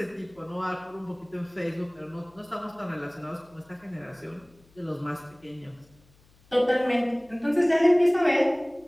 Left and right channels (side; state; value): left; noise; hum, 30 dB below the sound